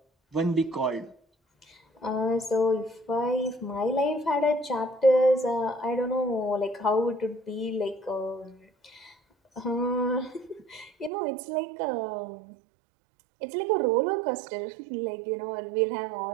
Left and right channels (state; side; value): drops out; left; at 11.1 s